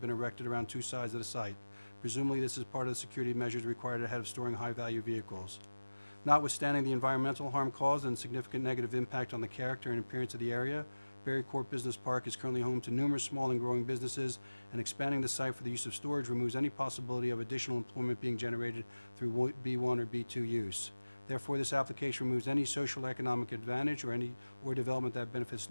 erected around 2 sides of the site. Presumably this is part of the security measures required ahead of storing high value vehicles. Notwithstanding the environmental harm caused and significant negative impact on the character and appearance of the area, Berry Court Business Park is currently home to numerous small and growing businesses, and expanding the site for the use of storage removes any possibility of additional employment being generated through B1 or B2 use. Therefore, this application removes any social economic advantage or development that benefits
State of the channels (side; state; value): both; inverted; correlation -1.00